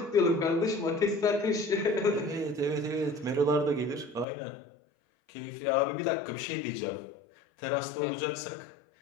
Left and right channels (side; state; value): right; drops out; at 4.2 s